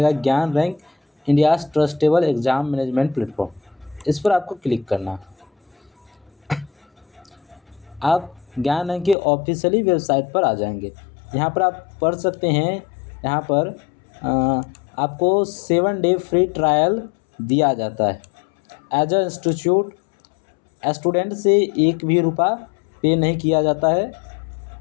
ज्ञान rank India's trustable exam management platform. इस पर आपको क्लिक करना है। आप ज्ञान रैंक की ऑफिशियली वेबसाइट पर आ जाएंगे। यहाँ पर आप पढ़ सकते हैं, यहाँ पर आपको 7 डे फ्री ट्रायल दिया जाता है। एज अ इंस्टीट्यूट स्टूडेंट से एक भी रुपया पे नहीं किया जाता है।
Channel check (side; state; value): right; drops out; at 9.2 s